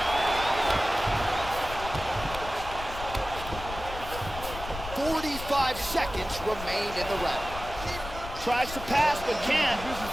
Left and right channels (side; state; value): left; noise; rumble, 10 dB below the sound